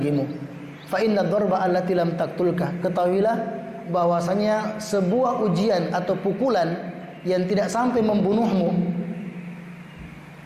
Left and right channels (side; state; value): both; identical; correlation 1.00